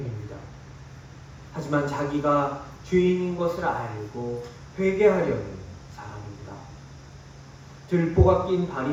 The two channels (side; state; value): both; identical; correlation 1.00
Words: 하지만 자기가 죄인인 것을 알고 회개하려는 사람입니다. 들보가 낀